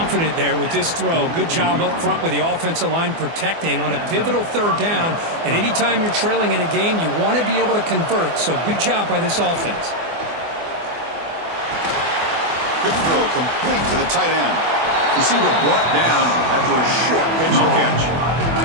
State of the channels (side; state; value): left; late; 24 ms